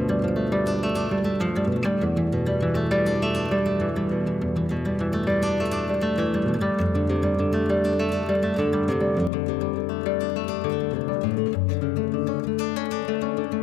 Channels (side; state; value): right; drops out; at 9.3 s